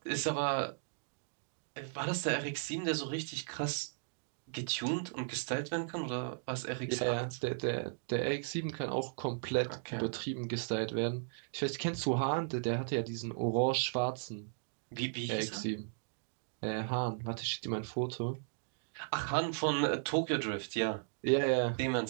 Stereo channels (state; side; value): silent; left; digital silence